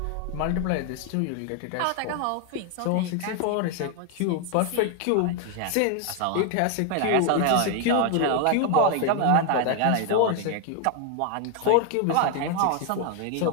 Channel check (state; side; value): different; both; correlation 0.00